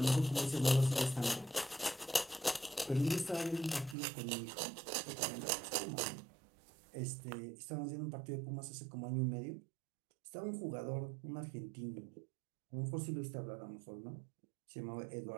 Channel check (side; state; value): left; drops out; at 4.0 s